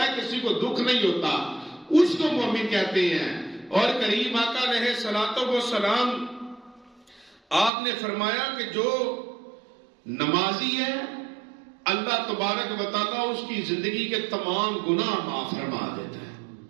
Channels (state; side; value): drops out; left; at 7.7 s